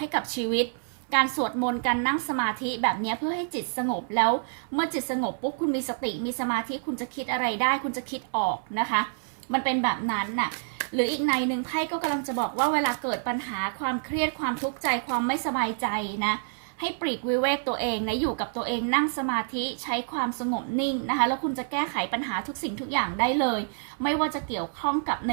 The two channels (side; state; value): left; silent; 56 dB below the other